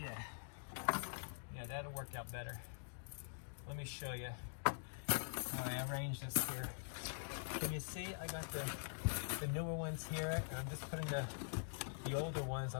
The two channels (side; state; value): right; silent; digital silence